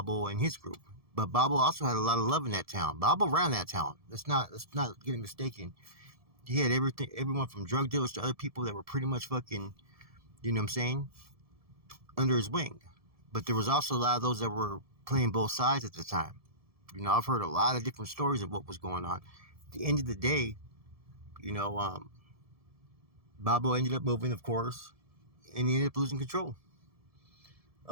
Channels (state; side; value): late; left; 1.7 ms